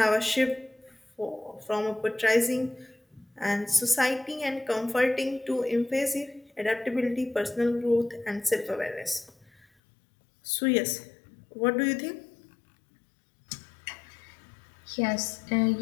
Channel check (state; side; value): drops out; right; at 9.7 s